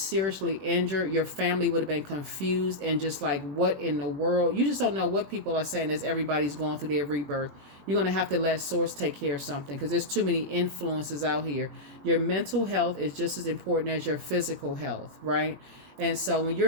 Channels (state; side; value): late; left; 21 ms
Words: injured. Your family would have been confused and just like, what in the world? You just don't know what people are saying as everybody's going through their rebirth. You're going to have to let Source take care of something, because there's too many influences out here. Your mental health is just as important as your physical health, right? And so when